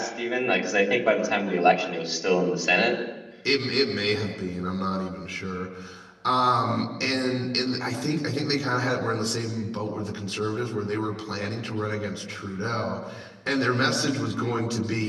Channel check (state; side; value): identical; both; correlation 1.00